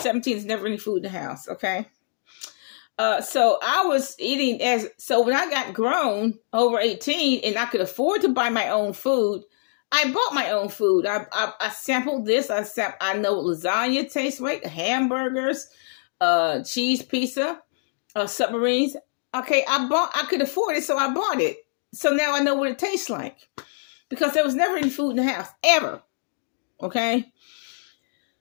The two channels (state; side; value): silent; right; digital silence